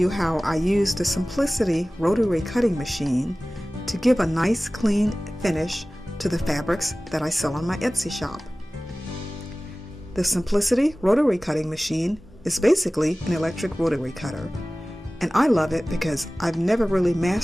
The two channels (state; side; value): normal; both; correlation 0.98